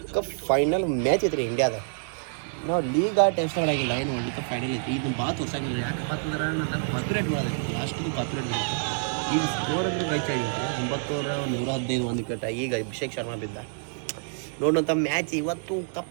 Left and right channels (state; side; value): silent; left; 60 dB below the other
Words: ಕಪ್ ಫೈನಲ್ ಮ್ಯಾಚ್ ಐತ್ರಿ ಇಂಡಿಯಾದ ನಾವು ಲೀಗ್ ಟೆಸ್ಟ್ ಮಾಡಾಗಿಲ್ಲ ಏನು ವರ್ಲ್ಡ್ ಕಪ್ ಫೈನಲ್ ಐತಿ ಇದನ್ನ ಭಾಳ ತೋರ್ಸಂಗಿಲ್ಲ ಯಾಕೆ ಯಾಕಂದ್ರೆ ನನ್ನ ಕಾಪಿರೇಟ್ ಮಾಡೋದೈತಿ ಲಾಸ್ಟ್ದು ಕಾಪಿರೇಟ್ ಈಗ ಸ್ಕೋರ್ ಮ್ಯಾಚ್ ಆಗಿತ್ತು 9,115 ಒಂದು ವಿಕೆಟ್ ಈಗ ಅಭಿಷೇಕ್ ಶರ್ಮಾ ಬಿದ್ದ ನೋಡೋಂಥ ಮ್ಯಾಚ್ ಇವತ್ತು